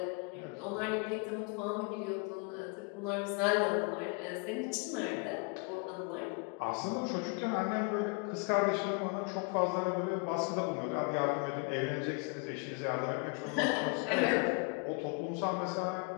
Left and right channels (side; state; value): right; quieter; 31.7 dB